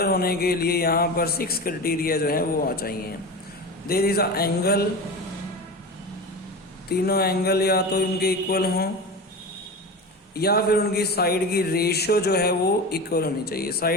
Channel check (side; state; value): both; normal; correlation 0.27